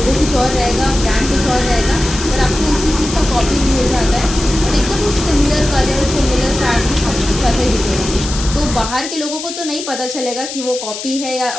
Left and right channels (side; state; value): left; noise; hiss, 8 dB below the sound